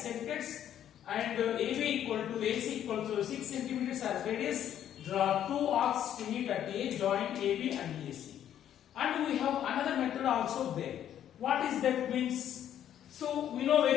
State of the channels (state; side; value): quieter; right; 10.5 dB